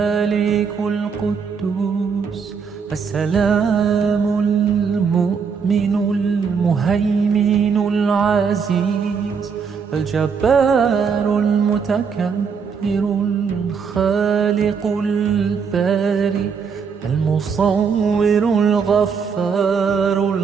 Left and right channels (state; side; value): quieter; left; 6.1 dB